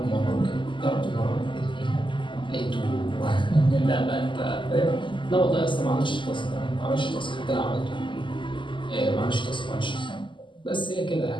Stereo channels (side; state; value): right; late; 0.24 ms